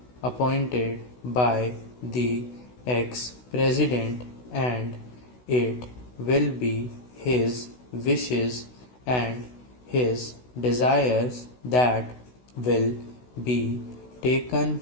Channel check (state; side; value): late; right; 16 ms